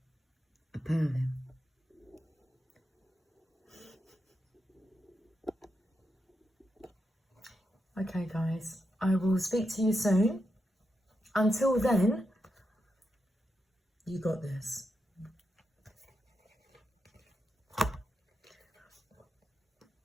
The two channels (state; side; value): normal; both; correlation 0.86